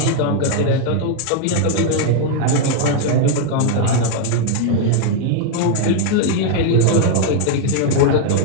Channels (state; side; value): different; both; correlation 0.00